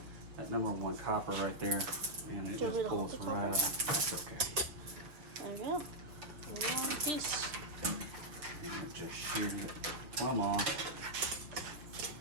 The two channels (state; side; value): late; left; 6.4 ms